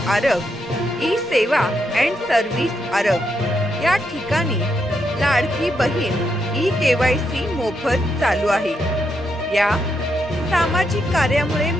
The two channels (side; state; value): both; normal; correlation 0.80